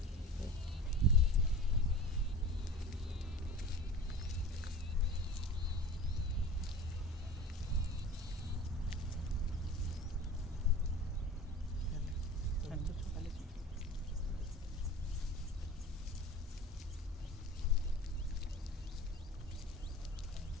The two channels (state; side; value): normal; both; correlation 0.38